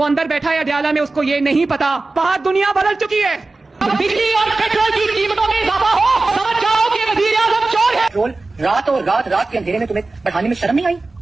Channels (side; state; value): left; quieter; 3.3 dB